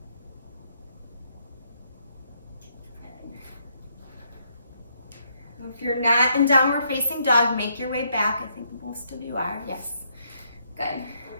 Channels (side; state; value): both; inverted; correlation -0.74